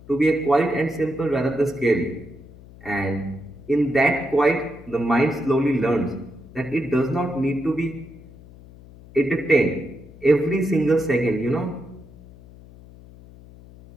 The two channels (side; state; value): left; noise; hum, 21 dB below the sound